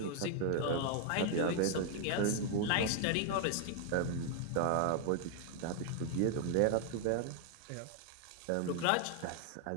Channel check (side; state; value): both; different; correlation 0.00